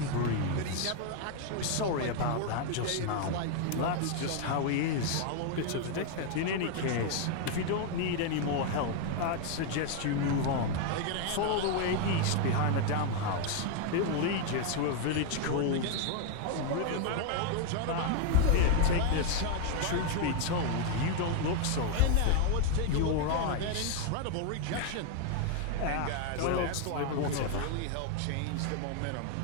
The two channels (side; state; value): both; different; correlation 0.01